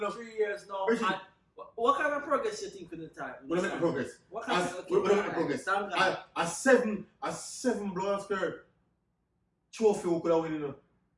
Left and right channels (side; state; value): both; identical; correlation 1.00